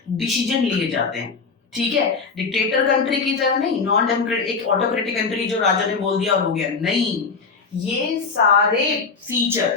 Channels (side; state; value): right; quieter; 4.9 dB